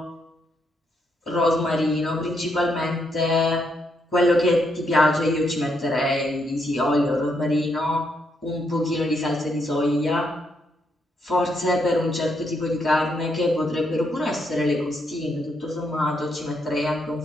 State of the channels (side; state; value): both; normal; correlation 0.77